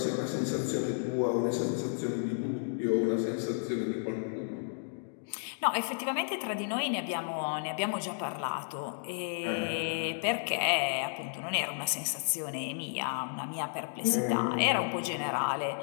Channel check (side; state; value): right; silent; digital silence